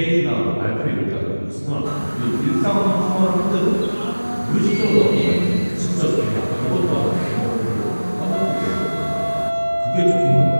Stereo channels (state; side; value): inverted; both; correlation -1.00